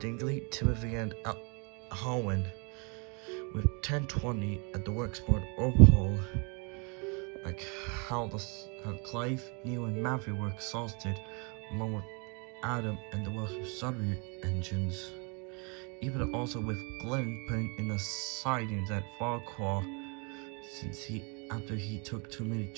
Dingley, Timothy, and Holwyn, with 1020 at the worksport overhaul, like how Clive, Neil, and Matthew were exhausted, along with Adam and the Welsh-Surrey engines. Even also with Glenn putting in the sidings at Farquhar, since after he took too many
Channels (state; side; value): quieter; left; 33.5 dB